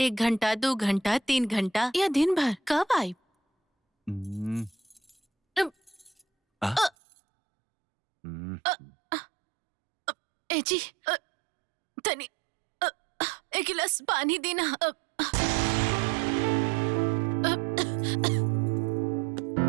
घंटा 2 घंटा 3 घंटा या दिन भर कब आई? ए जी तनी एक गिलास पानी देना।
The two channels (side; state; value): left; drops out; at 6.9 s